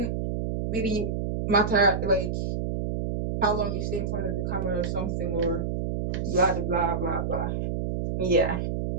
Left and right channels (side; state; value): right; noise; hum, 2 dB below the sound